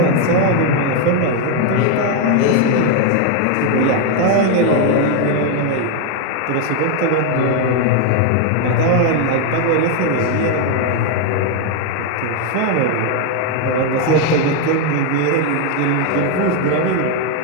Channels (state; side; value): different; both; correlation 0.01